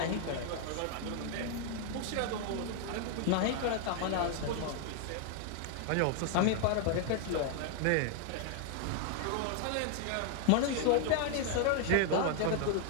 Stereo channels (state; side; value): different; both; correlation 0.00